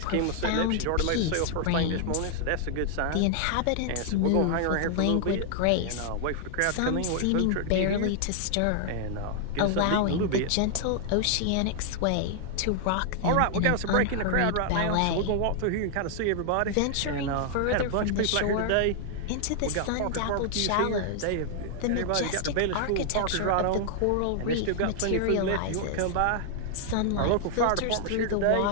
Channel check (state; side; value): different; both; correlation 0.00